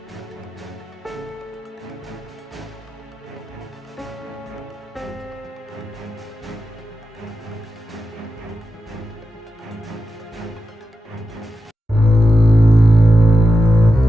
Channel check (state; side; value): normal; both; correlation 0.90